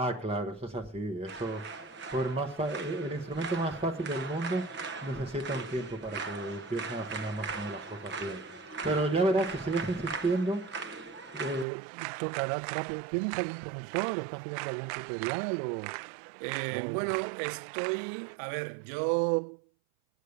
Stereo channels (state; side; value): drops out; left; at 11.7 s